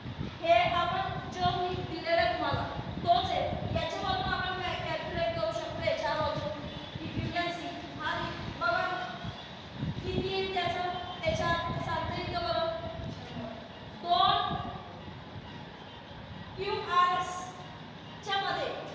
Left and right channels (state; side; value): identical; both; correlation 1.00